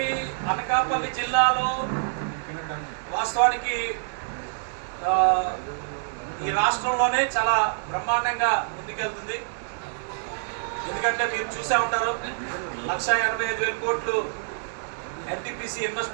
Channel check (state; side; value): silent; left; digital silence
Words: జిల్లాలో వాస్తవానికి ఈ రాష్ట్రంలోనే చాలా బ్రహ్మాండంగా ముందుకెళ్తుంది. ఎందుకంటే మీరు చూసే ఉంటారు, 1,85,000 కోట్లు ఎన్టీపీసీ